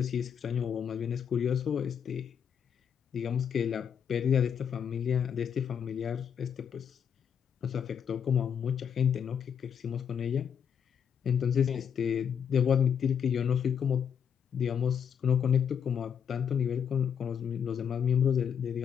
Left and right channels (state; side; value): quieter; right; 7.7 dB